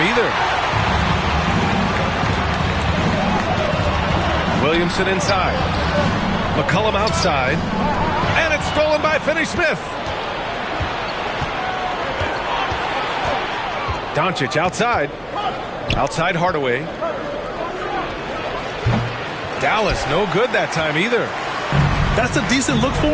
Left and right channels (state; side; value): identical; both; correlation 1.00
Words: either. Williamson inside. McCollum outside. And it's stolen by Finney-Smith. Doncic outside. Outside Hardaway. Dallas, no good that time either. That's a decent look for